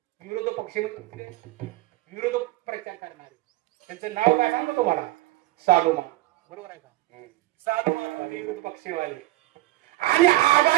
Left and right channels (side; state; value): left; quieter; 18.0 dB